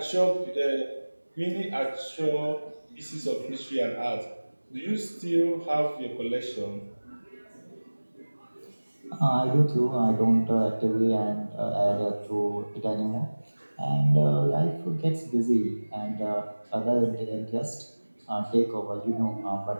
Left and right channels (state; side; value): inverted; both; correlation -1.00